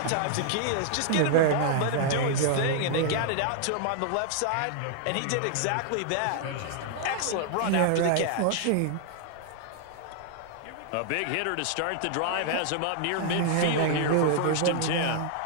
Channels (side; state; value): both; different; correlation 0.00